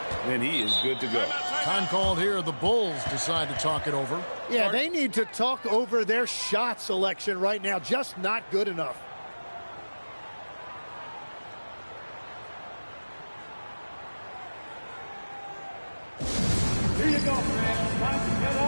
he is good to go. Time called here. The Bulls decide to talk it over. Yeah, they need to talk over their shot selection right now. Just not good enough. Here you go, man. Time to get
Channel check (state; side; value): inverted; both; correlation -1.00